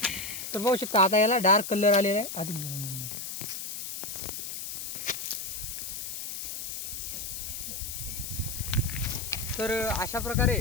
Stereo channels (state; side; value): noise; left; hiss, 6 dB below the sound